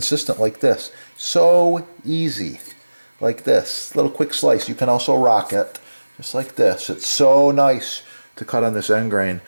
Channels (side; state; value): both; inverted; correlation -1.00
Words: like this. So easy, like this. Little quick slice. You can also rock it, just like this. It's so nice to cut on this end grain.